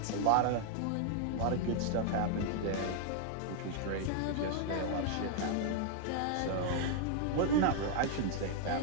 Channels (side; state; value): both; different; correlation 0.00